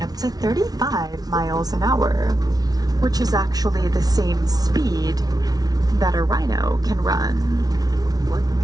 up to 35 miles an hour, which is actually the same speed that a rhino can run.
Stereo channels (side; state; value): left; late; 0.19 ms